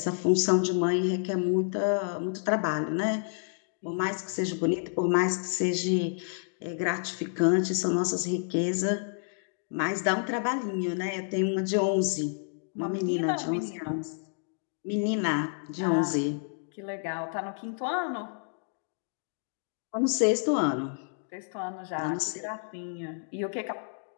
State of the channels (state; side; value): silent; right; digital silence